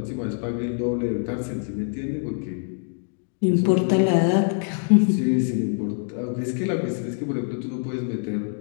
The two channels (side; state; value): right; silent; 57 dB below the other